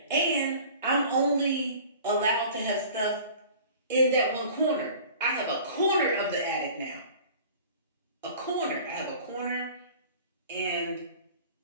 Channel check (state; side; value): inverted; both; correlation -0.45